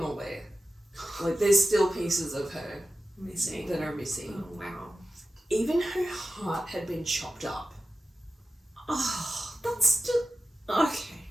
all there. Like, there's still pieces of her Missing. that are missing. Oh wow. Even her heart had been chopped up. Oh, that's just... Okay.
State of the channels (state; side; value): normal; both; correlation 0.90